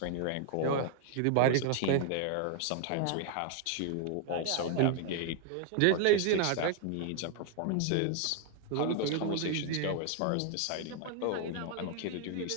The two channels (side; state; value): both; different; correlation 0.00